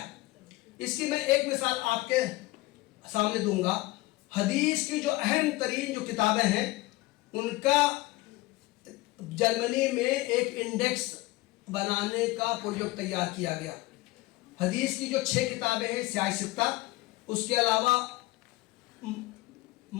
इसकी मैं एक मिसाल आपके सामने दूंगा। हदीस की जो अहम तरीन जो किताबें हैं उनका जर्मनी में एक इंडेक्स बनाने का प्रोजेक्ट तैयार किया गया। हदीस की जो 6 किताबें हैं सियासित्ता, उसके अलावा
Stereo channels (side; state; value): right; quieter; 20.0 dB